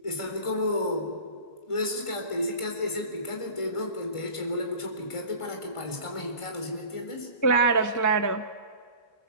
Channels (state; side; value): late; right; 1.5 ms